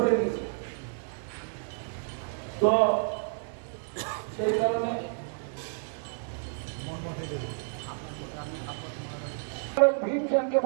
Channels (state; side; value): silent; left; 58 dB below the other